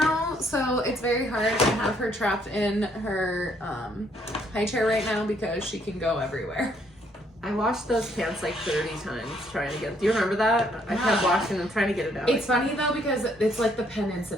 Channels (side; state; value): both; normal; correlation 0.68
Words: so it's very hard to have her trapped in her high chair right now because she can go everywhere. I washed those pants like 30 times trying to get. Do you remember that? I kept washing them, trying to get it out. It's funny though because it's like the pen